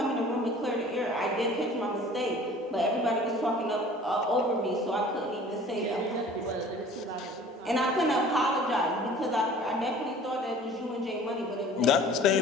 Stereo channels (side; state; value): both; normal; correlation 0.47